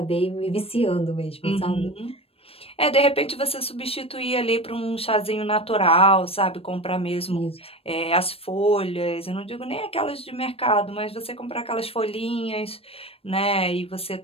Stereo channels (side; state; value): right; late; 0.28 ms